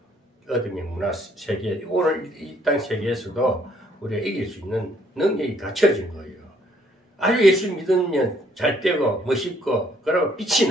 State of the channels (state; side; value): normal; both; correlation 0.66